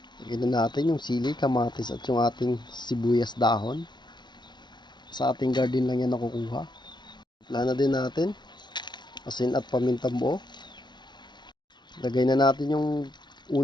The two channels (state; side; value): late; right; 0.21 ms